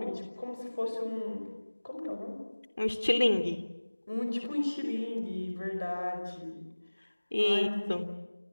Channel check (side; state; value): both; inverted; correlation -1.00